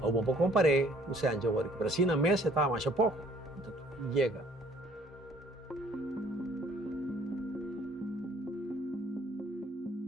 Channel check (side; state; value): both; normal; correlation 0.58